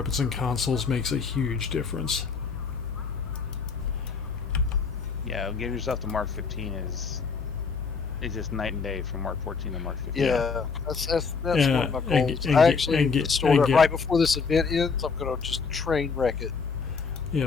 and consoles makes a huge difference. Yeah, getting yourself to Mark 15 is just night and day from Mark 14 to Mark 15. Yeah, that's one of my goals. I actually stored it right before this event ends. I'm gonna just train wreck it.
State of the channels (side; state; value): right; quieter; 5.2 dB